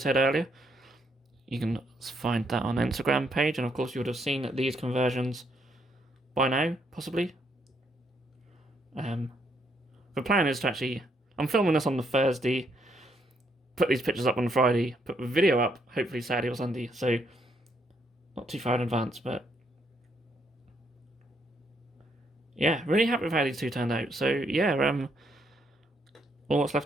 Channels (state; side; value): normal; both; correlation 0.73